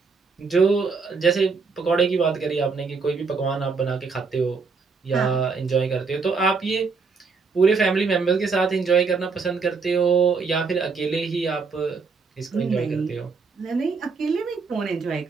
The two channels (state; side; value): quieter; left; 4.8 dB